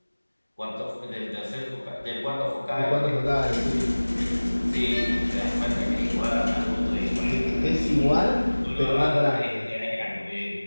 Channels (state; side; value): inverted; both; correlation -1.00